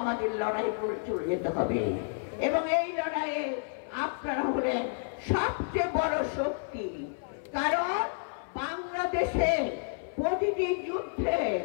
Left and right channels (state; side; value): silent; right; 58 dB below the other